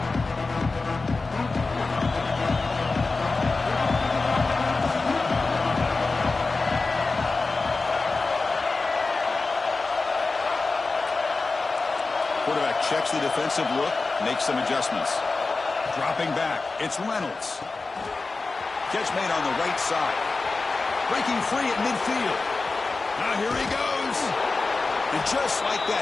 Quarterback checks the defensive look, makes some adjustments. Dropping back, it's Reynolds. Catch made on the right side. Breaking free at midfield. Now here he goes. And just like that,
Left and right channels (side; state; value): right; quieter; 3.8 dB